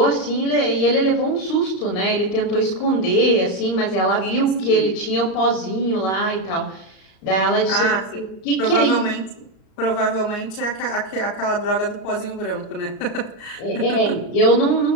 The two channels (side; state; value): right; late; 39 ms